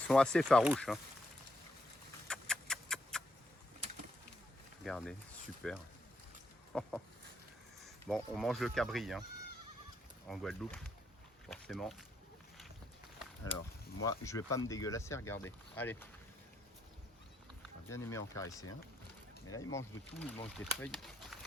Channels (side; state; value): both; normal; correlation 0.77